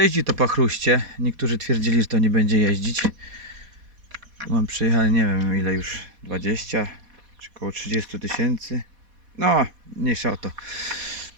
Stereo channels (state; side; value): late; left; 4.1 ms